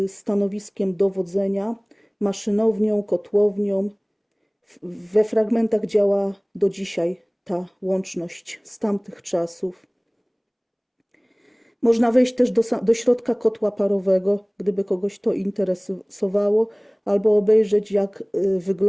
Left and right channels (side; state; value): both; identical; correlation 1.00